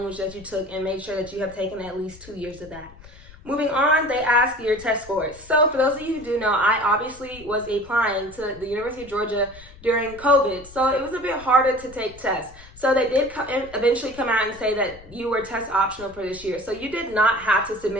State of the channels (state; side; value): noise; left; rumble, 21 dB below the sound